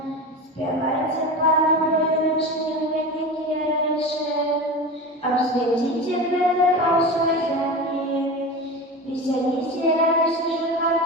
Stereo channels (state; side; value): normal; both; correlation 0.27